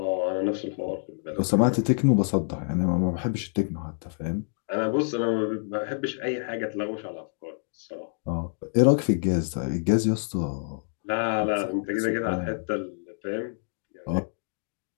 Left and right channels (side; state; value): right; silent; digital silence